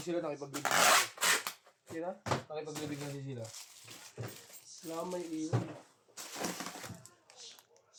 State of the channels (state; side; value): identical; both; correlation 1.00